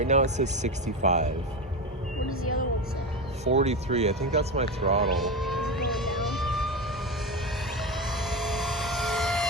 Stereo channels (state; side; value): normal; both; correlation 0.19